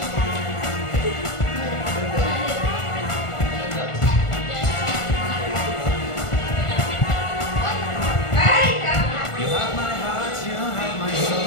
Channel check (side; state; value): right; late; 1.4 ms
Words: You have my heart, you have my soul,